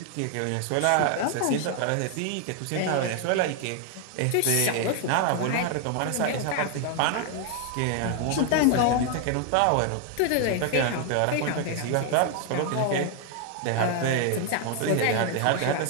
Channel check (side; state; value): both; different; correlation 0.00